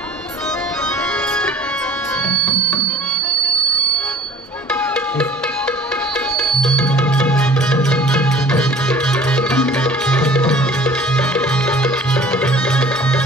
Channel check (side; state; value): both; normal; correlation 0.49